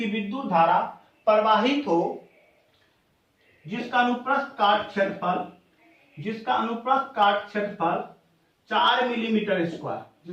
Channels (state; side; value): identical; both; correlation 1.00